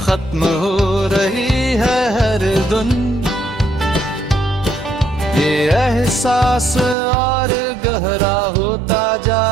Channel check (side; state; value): left; drops out; at 7.0 s